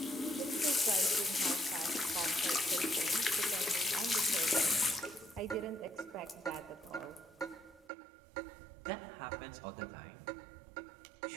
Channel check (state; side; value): drops out; left; at 7.9 s